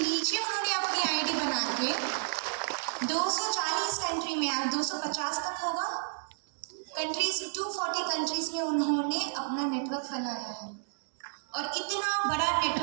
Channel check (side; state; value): left; silent; digital silence